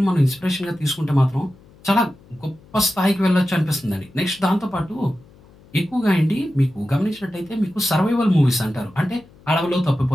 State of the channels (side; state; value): left; noise; hum, 26 dB below the sound